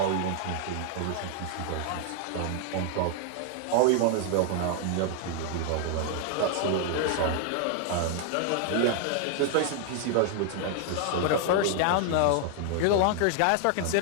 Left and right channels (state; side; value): different; both; correlation 0.00